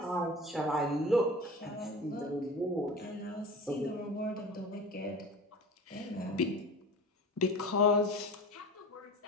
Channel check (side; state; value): both; normal; correlation 0.35